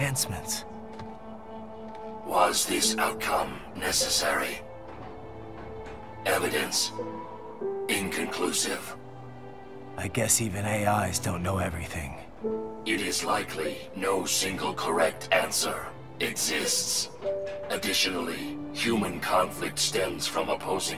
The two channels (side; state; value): both; identical; correlation 1.00